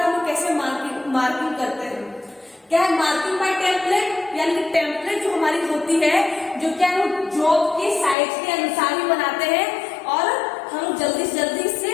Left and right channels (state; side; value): drops out; right; at 8.2 s